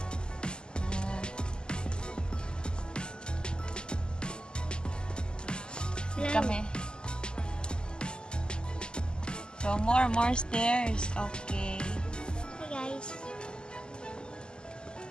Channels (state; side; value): late; right; 0.047 ms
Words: Kami. So, more stairs. Okay. Hey guys.